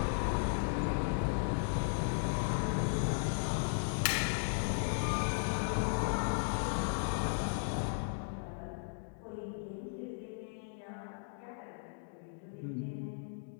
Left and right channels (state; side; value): silent; right; digital silence